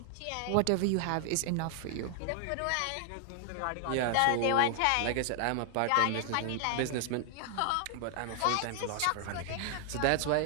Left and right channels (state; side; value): different; both; correlation 0.00